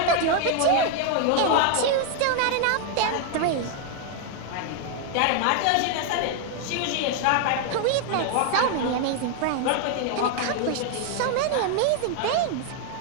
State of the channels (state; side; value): different; both; correlation 0.00